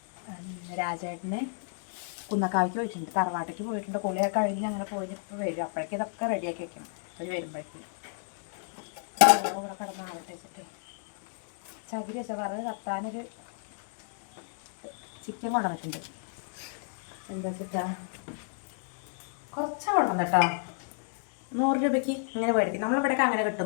രാജേട്ടന് കുന്നക്കാവിക്ക് പോയിട്ടുണ്ട്, തറവാട്ടേക്ക് പോയിട്ടുണ്ട്. കുളിയൊക്കെ കഴിഞ്ഞ് അങ്ങനെ പോയി ഇപ്പോൾ വരും. അപ്പോഴേക്കും ഇതൊക്കെ റെഡിയാക്കി വെക്കണം. അവർ വരുമ്പോഴേക്കും ഇവിടെ കിടന്ന് ആവട്ടെ വെച്ചിട്ട് ചകിരി വെച്ചാൽ പറഞ്ഞത് കത്താനൊരു ചിക്കൻ കൊണ്ടുവന്നിട്ടുണ്ട്. എന്താ വെച്ചിട്ടാ കുറച്ചാണ് കൊണ്ടുവന്ന് കേട്ടോ. 100 രൂപയ്ക്ക് ഇങ്ങനെ മേടിക്കും. നമ്മളിവിടെയൊക്കെ അങ്ങനെ കിട്ടും.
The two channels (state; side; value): silent; right; digital silence